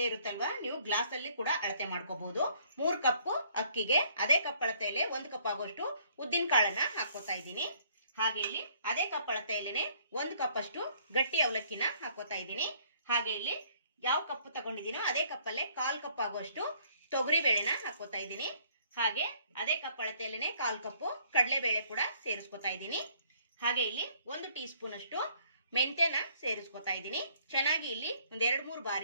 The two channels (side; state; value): both; inverted; correlation -0.63